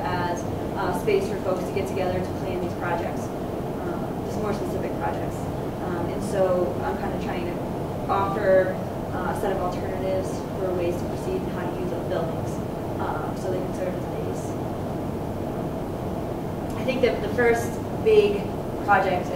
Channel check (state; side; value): identical; both; correlation 1.00